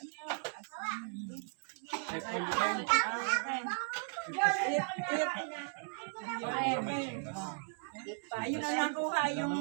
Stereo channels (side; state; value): left; silent; 54 dB below the other